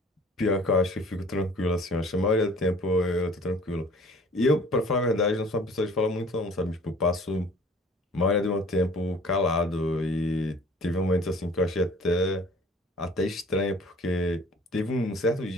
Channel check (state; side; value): normal; both; correlation 0.50